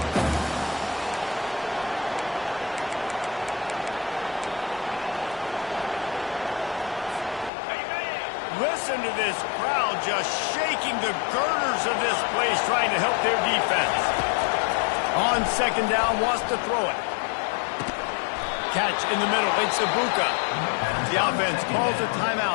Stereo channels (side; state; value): right; drops out; at 7.5 s